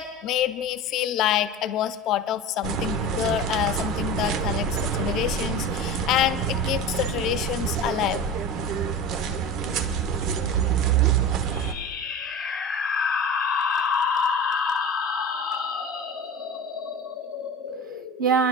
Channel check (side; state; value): both; normal; correlation 0.30